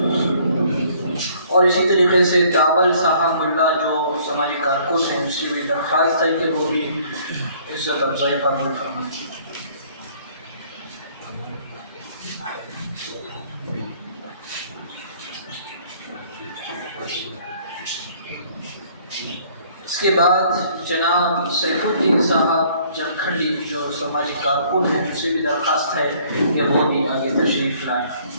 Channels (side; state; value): both; inverted; correlation -0.59